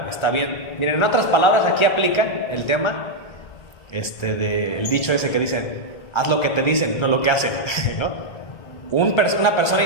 está bien. Miren, en otras palabras, aquí aplica el tema, el dicho ese que dicen, haz lo que te dicen, no lo que hacen, ¿no? Una persona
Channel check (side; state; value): right; late; 1.3 ms